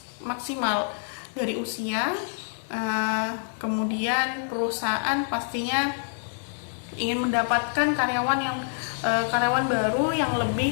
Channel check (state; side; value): silent; right; digital silence